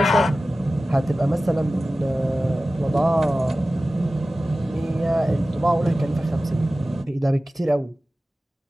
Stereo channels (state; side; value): normal; both; correlation 0.96